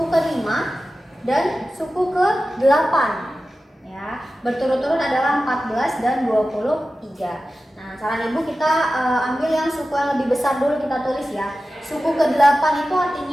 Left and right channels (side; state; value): both; normal; correlation 0.94